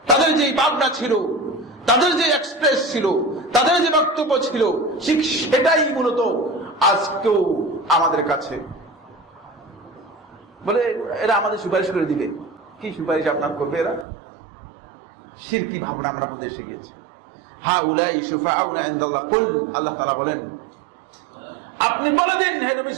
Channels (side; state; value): left; drops out; at 14.1 s